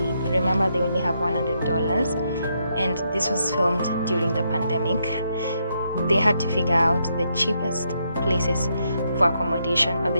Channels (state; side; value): inverted; both; correlation -0.78